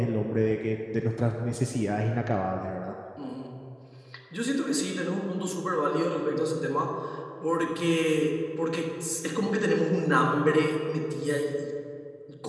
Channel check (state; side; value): identical; both; correlation 1.00